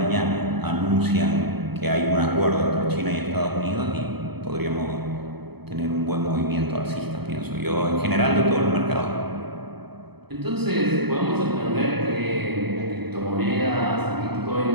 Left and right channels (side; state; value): left; late; 0.97 ms